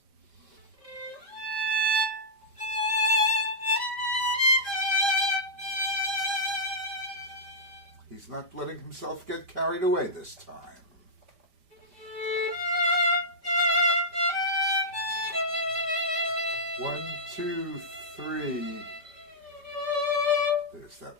He's not letting himself get carried away this time. One, 2, 3. There's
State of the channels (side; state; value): left; late; 5.0 ms